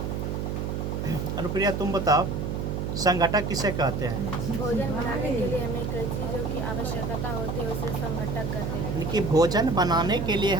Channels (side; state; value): right; noise; hum, 2 dB below the sound